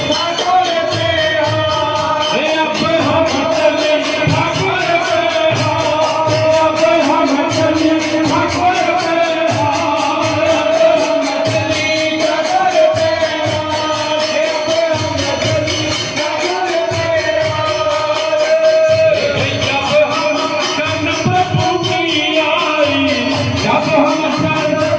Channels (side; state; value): both; identical; correlation 1.00